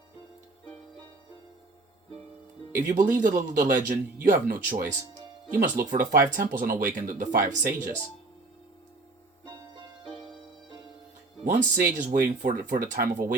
If you believe the legend, you have no choice. You must look for the 5 temples and awaken the 5 sages. One sage is waiting for the time of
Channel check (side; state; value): left; quieter; 3.2 dB